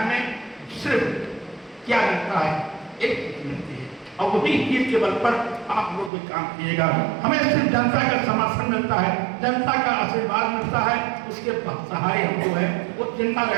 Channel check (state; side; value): drops out; left; at 6.1 s